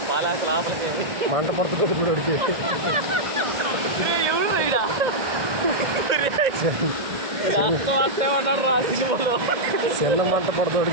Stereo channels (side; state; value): left; late; 2.0 ms